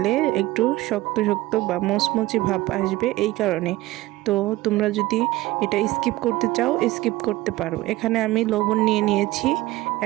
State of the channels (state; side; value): quieter; left; 17.9 dB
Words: একটু শক্ত শক্ত বা মচমচে ভাব আসবে, এই কারণে। তো তোমরা যদি এটা স্কিপ করতে চাও স্কিপ করতে পারো। এখানে আমি লবণ নিয়ে নিয়েছি,